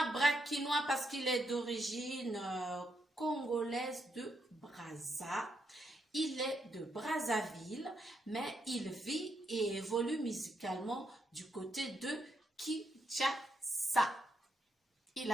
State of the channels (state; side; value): normal; both; correlation 0.79